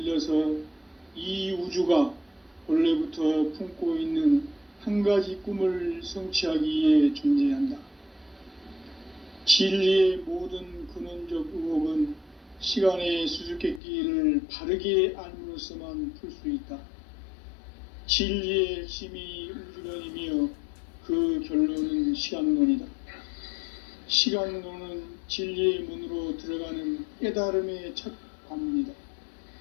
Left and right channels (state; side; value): drops out; right; at 13.8 s